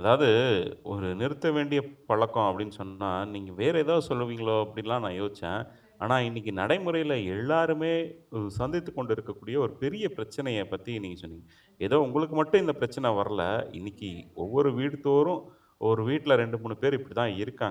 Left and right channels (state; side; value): identical; both; correlation 1.00